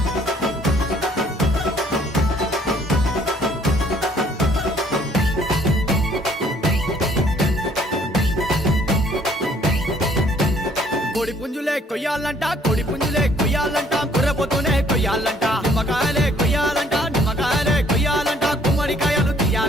కోడి పుంజులే కొయ్యాలంట, కోడి పుంజులే కొయ్యాలంట, కుర్రపోతూనే కొయ్యాలంట, నిమ్మకాయలే కొయ్యాలంట, నిమ్మకాయలే కొయ్యాలంట, కుమ్మడికాయలు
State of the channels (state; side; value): normal; both; correlation 0.62